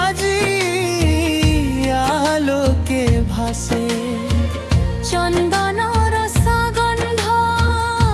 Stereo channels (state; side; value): identical; both; correlation 1.00